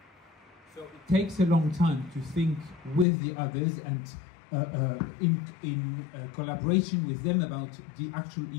So it takes a long time to think with the others and in collaboration with them about the actual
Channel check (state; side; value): drops out; right; at 3.1 s